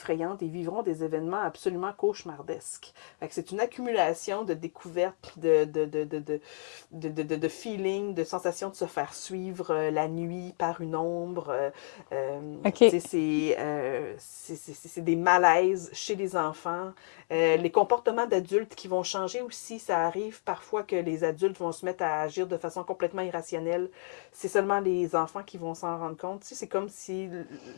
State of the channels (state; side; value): silent; right; digital silence